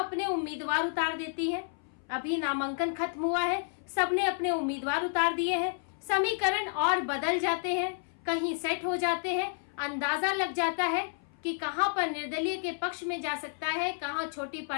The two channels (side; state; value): right; silent; 57 dB below the other